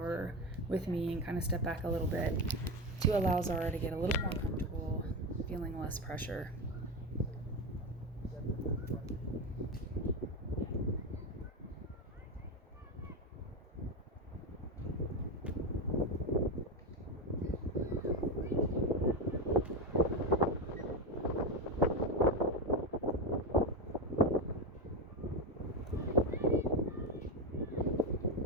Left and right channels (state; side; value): normal; both; correlation 0.14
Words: with me and kind of step back a little bit to allow Zahra to get a little more comfortable, feeling less pressure.